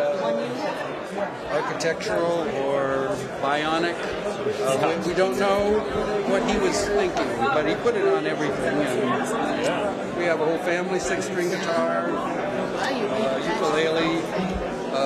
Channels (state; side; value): identical; both; correlation 1.00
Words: architectural or bionic. We don't know what he was thinking, but he put it on everything. And we have a whole family, 6-string guitar, ukulele,